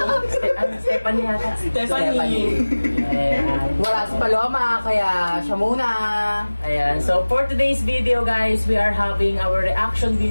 Stephanie yata. Stephanie. Ayan. Wala si Paloma, kaya siya muna. Ayan. So for today's video guys, we are having our reaction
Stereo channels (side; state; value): both; inverted; correlation -1.00